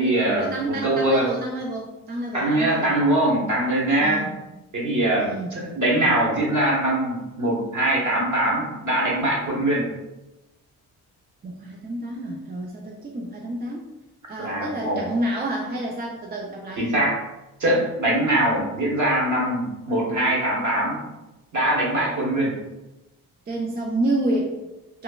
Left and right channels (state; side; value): normal; both; correlation 0.20